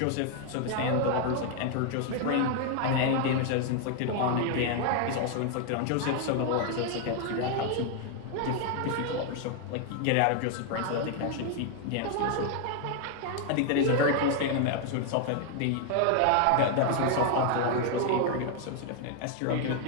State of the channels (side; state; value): both; different; correlation 0.00